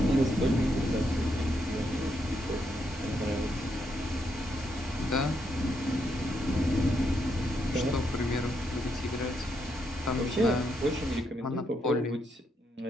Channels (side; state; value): both; normal; correlation 0.79